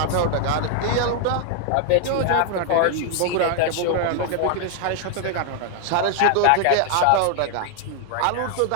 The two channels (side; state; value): both; different; correlation 0.00